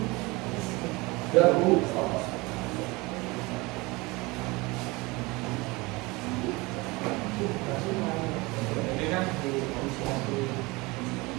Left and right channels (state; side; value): quieter; left; 23.9 dB